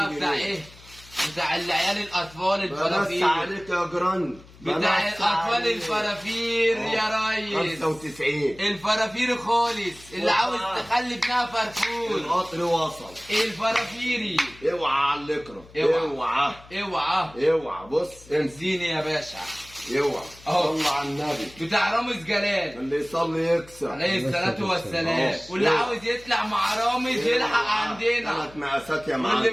بتاع جنيه. ايه؟ بتاع العيال الاطفال بس الفرافير. عليك يا جران. بتاع الاطفال الفرافير يا ريس. 95. الفرافير خالص اللي عاوز تخلي ابنها فرفور. القطر وصل. الفرافيري. اوعى على اللكرة. اوعى. اوعى. اوعى. اوعى. بص امسك. اديني يا باشا. اوعى أهو. صل على النبي. بتاع رامز جلال اللي يصلي يكسب. عليه الصلاة والسلام. واللي عاوز يطلع مع رامز يلحق عندنا، 3 مقاسات يا معلم. واللي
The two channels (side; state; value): left; noise; hum, 22 dB below the sound